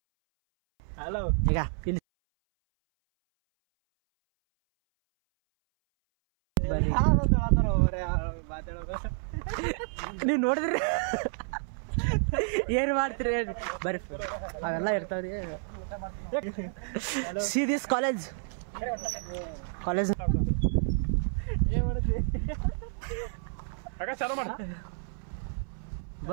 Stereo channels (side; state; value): left; silent; 58 dB below the other